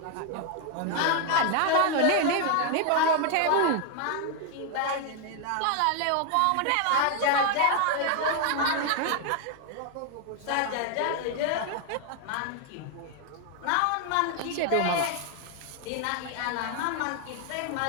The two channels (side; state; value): both; different; correlation 0.00